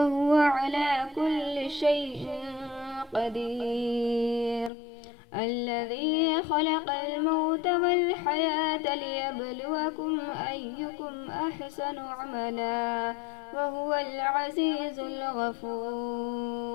على كل شيء قدير، الذي خلق الموت والحياة ليبلوكم أيكم أحسن عملا وهو العزيز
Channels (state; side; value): drops out; right; at 4.7 s